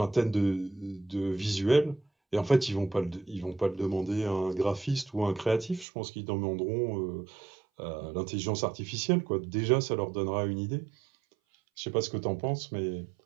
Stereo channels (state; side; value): drops out; left; at 5.9 s